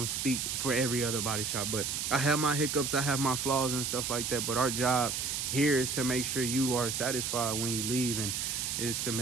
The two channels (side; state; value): right; noise; hiss, 1 dB below the sound